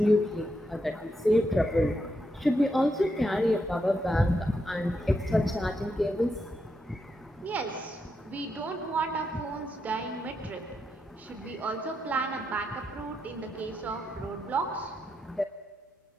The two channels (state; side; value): normal; both; correlation 0.83